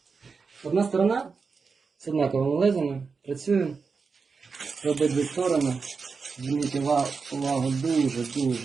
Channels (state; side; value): quieter; left; 5.0 dB